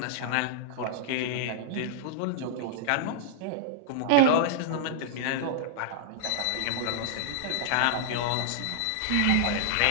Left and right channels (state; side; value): different; both; correlation -0.01